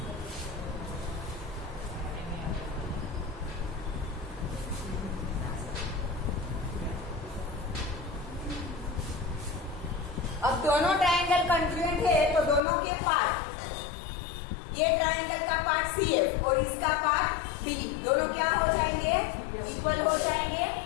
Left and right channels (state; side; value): drops out; right; at 12.6 s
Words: अब दोनों ट्रायंगल कॉन्ग्रुएंट है तो दोनों के पार्ट, ये ट्रायंगल का पार्ट CF और इसका पार्ट बी, दोनों क्या हो जाएंगे? इक्वल हो जाएंगे।